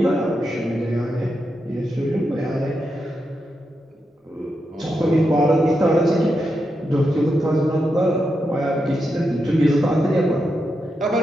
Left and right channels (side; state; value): both; normal; correlation 0.86